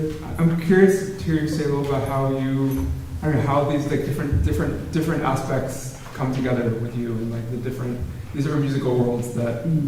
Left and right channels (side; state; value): both; identical; correlation 1.00